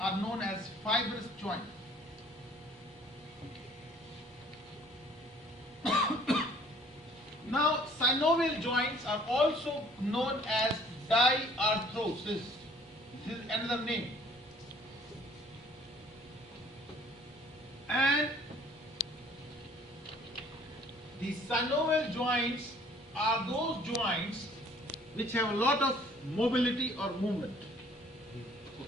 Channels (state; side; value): normal; both; correlation 0.56